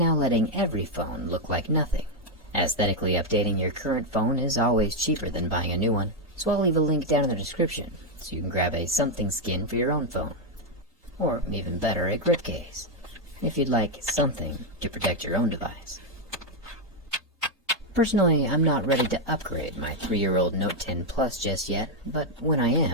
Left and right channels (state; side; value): normal; both; correlation 0.02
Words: letting every phone look like nothing. Aesthetically updating your current phone is always cheaper than buying a new one, so I'll leave a link down in the description so you can grab a something skin for your own phone. Or even better, a grip case, if you'd like something to protect your own device. Personally, I'm not ready to upgrade my 3-year-old Note 10 Plus just yet, but when I